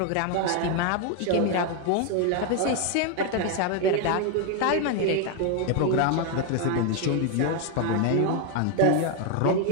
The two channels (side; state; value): both; different; correlation 0.01